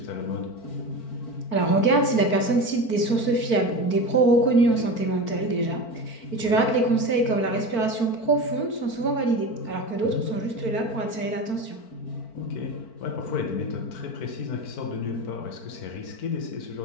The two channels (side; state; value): right; late; 4.5 ms